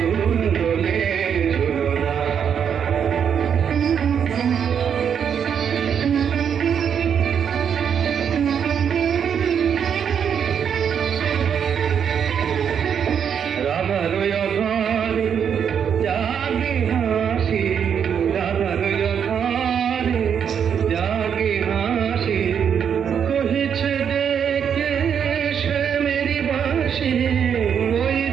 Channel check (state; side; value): quieter; left; 7.8 dB